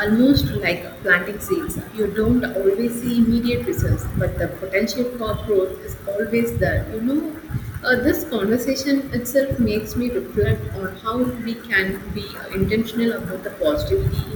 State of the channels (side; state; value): both; identical; correlation 1.00